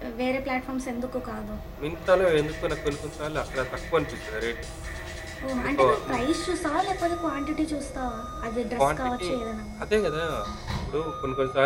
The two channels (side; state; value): both; identical; correlation 1.00